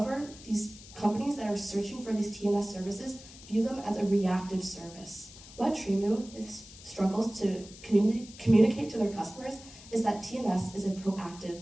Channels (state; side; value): noise; left; hiss, 18 dB below the sound